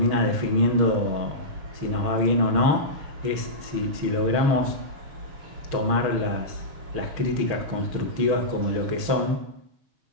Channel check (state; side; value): late; left; 6.4 ms